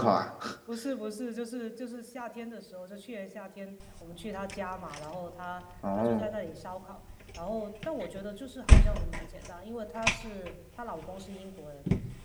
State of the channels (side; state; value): both; identical; correlation 1.00